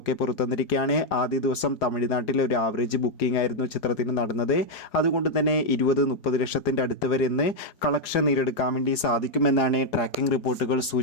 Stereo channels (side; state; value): right; late; 4.8 ms